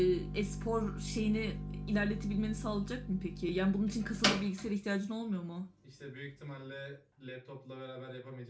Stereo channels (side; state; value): both; identical; correlation 1.00